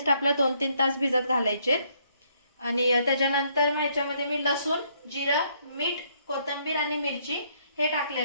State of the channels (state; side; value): inverted; both; correlation -0.69